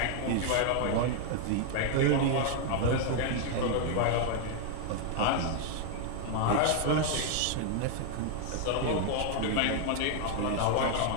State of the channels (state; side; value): different; both; correlation 0.00